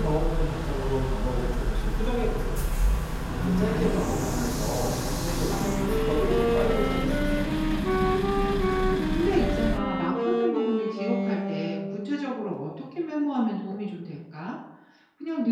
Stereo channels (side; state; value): both; identical; correlation 1.00